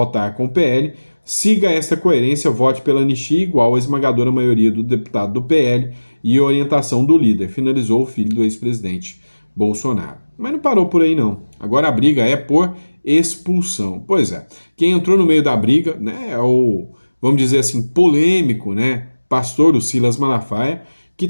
com o PL, siga esta coerência, vote pela anistia igual à esmagadora maioria do deputado do PL e orientação do líder, finalizou o filho do ex-presidente Bolsonaro. Mas não parou por aí não. Agora a briga é por expulsão. Pois é, quem entrou no meio da briga, né, é o, vamos dizer assim, polêmico, né, pastor o Silas Malafaia, que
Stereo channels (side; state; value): both; inverted; correlation -1.00